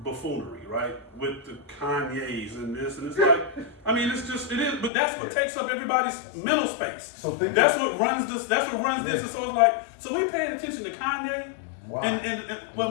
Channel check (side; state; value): right; drops out; at 4.9 s